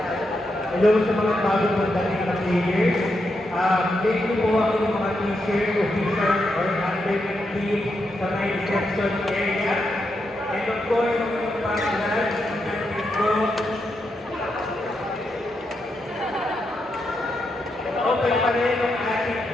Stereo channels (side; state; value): both; normal; correlation 0.83